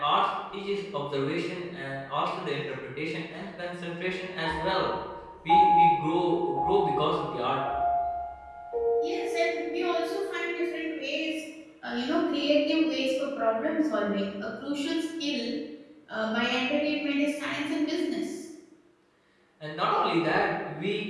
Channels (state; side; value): identical; both; correlation 1.00